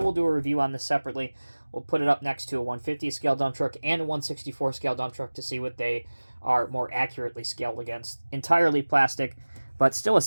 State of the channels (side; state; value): both; inverted; correlation -1.00